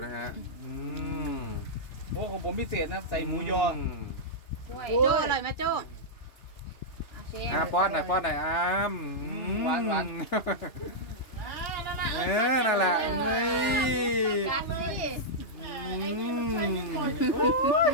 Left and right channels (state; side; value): late; right; 3.4 ms